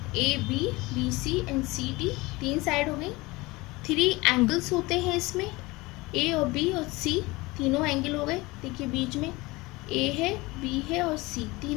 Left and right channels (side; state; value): right; quieter; 22.2 dB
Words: B C and C D, 3 side हो गई। 3 एंगल्स होते हैं इसमें, ए और बी और सी, तीनों एंगल हो गए। देखिए बीच में ए है, बी है और सी,